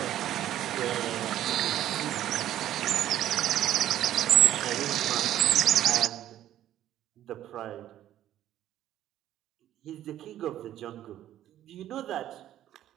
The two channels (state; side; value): quieter; left; 12.3 dB